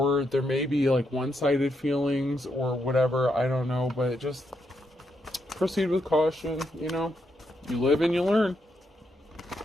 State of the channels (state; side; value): normal; both; correlation 0.80